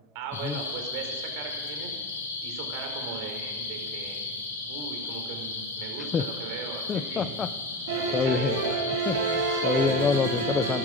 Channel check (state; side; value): normal; both; correlation 0.21